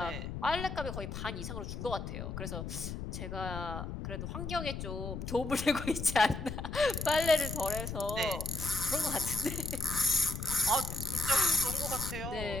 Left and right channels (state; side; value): noise; left; rumble, 6 dB below the sound